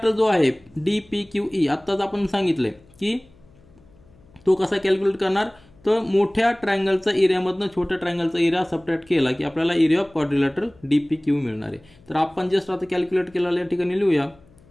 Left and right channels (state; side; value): noise; left; hum, 28 dB below the sound